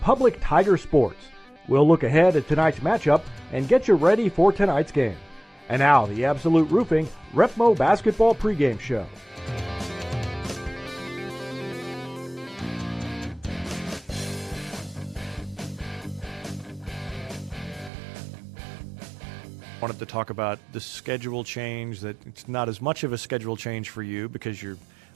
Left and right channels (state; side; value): drops out; left; at 17.9 s